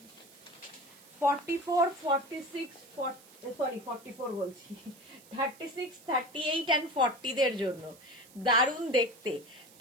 44, 46, 44 বলছি, 36, 38 and 40 দের জন্য দারুন দেখতে।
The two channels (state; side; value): noise; right; hiss, 23 dB below the sound